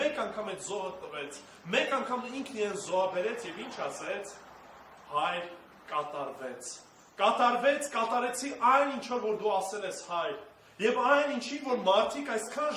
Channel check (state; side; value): identical; both; correlation 1.00